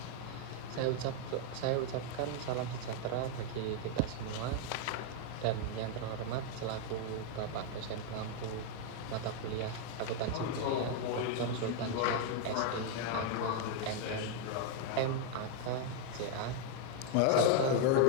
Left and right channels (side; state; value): both; different; correlation 0.00